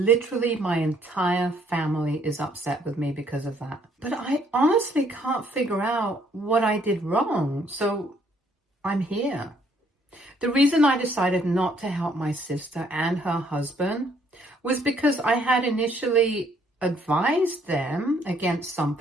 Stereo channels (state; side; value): normal; both; correlation 0.66